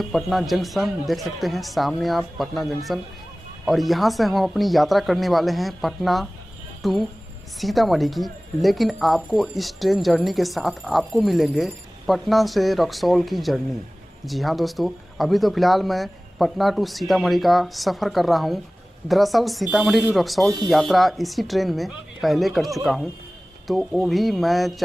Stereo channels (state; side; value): normal; both; correlation 0.98